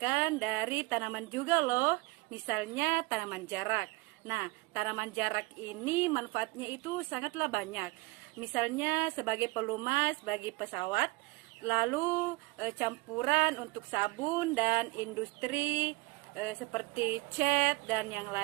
dari tanaman juga loh, misalnya tanaman jarak. Nah, tanaman jarak ini manfaatnya itu sangatlah banyak. Misalnya sebagai pelumas bagi pesawat, lalu campuran untuk sabun dan industri seperti cat dan yang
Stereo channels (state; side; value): quieter; left; 23.2 dB